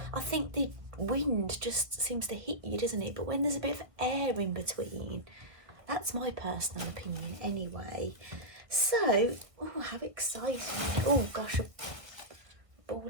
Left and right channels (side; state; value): left; late; 1.5 ms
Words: I think the wind just seems to hit you, doesn't it? But when there's a bit of air in between, that's my personal opinion anyway. So, oh, how exciting. Oh gosh, a ball